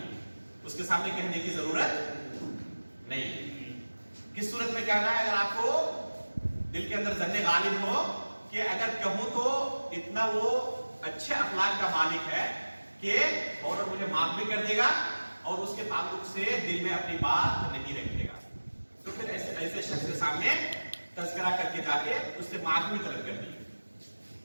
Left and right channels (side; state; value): both; inverted; correlation -1.00